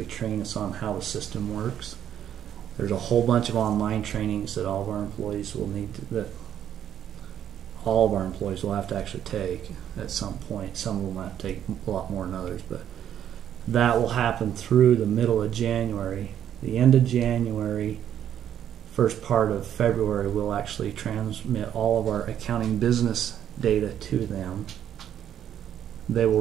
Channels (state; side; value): quieter; left; 10.1 dB